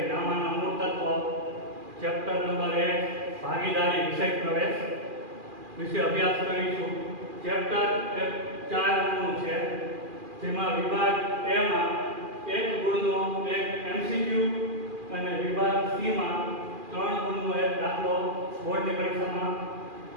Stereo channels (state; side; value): late; left; 2.4 ms